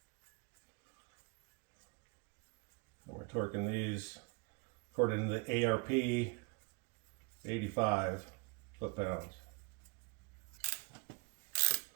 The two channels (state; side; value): quieter; left; 31.4 dB